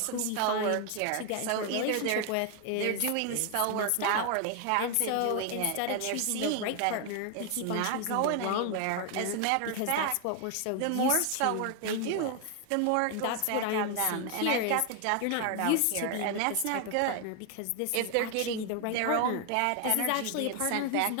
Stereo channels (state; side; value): different; both; correlation 0.00